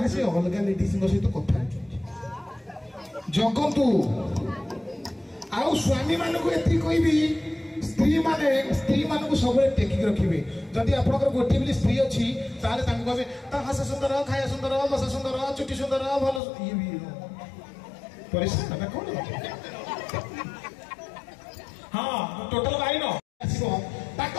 ସେ ଅଲଗା ଲେଡିଜଙ୍କ ସହିତ କଥା ହଉଛନ୍ତି। ଜଗନ୍ତୁ ଆଉ ସ୍ୱାମୀ ମାନଙ୍କୁ ଏତିକି କହିବି, ସ୍ତ୍ରୀ ମାନଙ୍କୁ ସବୁବେଳେ ଟେକିକି ରଖିବେ। ଯଦି ଆପଣଙ୍କର ଗୋଟିଏ ବୋଲି ସ୍ତ୍ରୀ ଅଛି ତାହେଲେ ତାଙ୍କୁ କହିବେ ତା ହସ ସୁନ୍ଦର, ଖାଇବା ସୁନ୍ଦର, ବସା ସୁନ୍ଦର, ଚୁଟି ସୁନ୍ଦର, ଭଲ ଇଏ ବି ପରିଷ୍କାର କଣ? ହଁ ଟୋଟାଲ ବାଇନ ଆସିବ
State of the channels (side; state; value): right; drops out; at 16.4 s